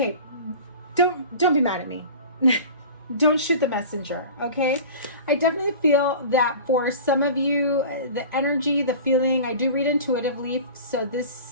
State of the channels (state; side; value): inverted; both; correlation -0.38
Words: don't be mad at me. Don't shoot the messenger, okay? I definitely feel that for some of you, the energy, the feeling, I do read intuitively, so